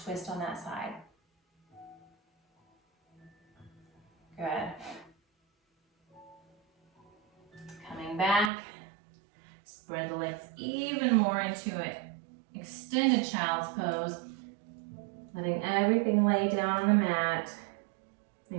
twist on that side. Good. Coming back, spread the legs even more into an extended child's pose, letting everything lay down on the mat,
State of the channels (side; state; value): left; drops out; at 8.5 s